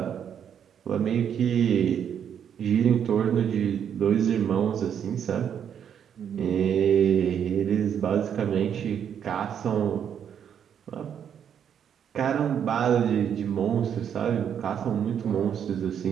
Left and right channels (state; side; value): quieter; left; 8.5 dB